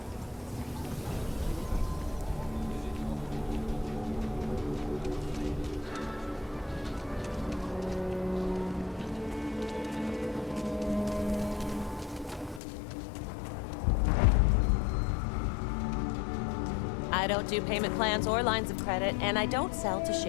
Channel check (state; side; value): drops out; right; at 12.6 s